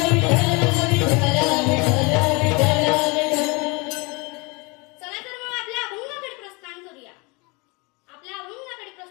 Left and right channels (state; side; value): quieter; right; 28.0 dB